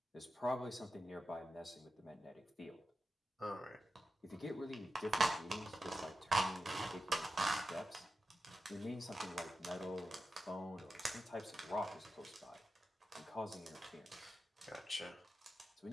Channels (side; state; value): both; normal; correlation 0.92